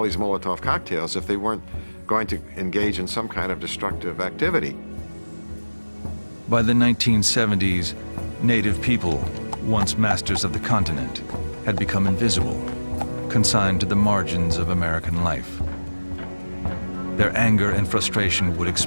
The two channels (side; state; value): both; inverted; correlation -1.00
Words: these Molotov cocktails if they weren't going to engage in some kind of destructive activity? By the 1970s, Native people, once masters of the continent, had become invisible, consigned to the margins of American life. Their anger and frustration would